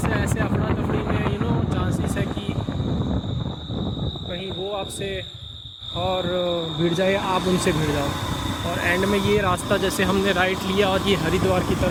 ऐसे अफरा तफरी में चांसेस है कि कहीं वो आपसे और भिड़ जाए, आप उनसे भिड़ जाओ। और एंड में ये रास्ता जैसे हमने राइट लिया और ये हरिद्वार की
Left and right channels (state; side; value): identical; both; correlation 1.00